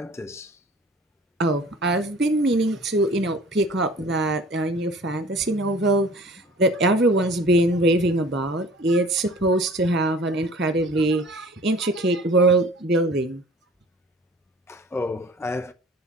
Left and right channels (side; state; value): both; normal; correlation 0.47